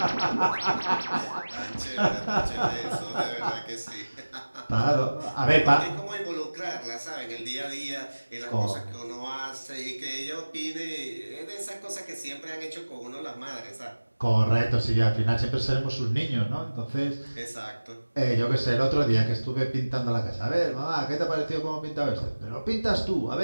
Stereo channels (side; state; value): both; inverted; correlation -1.00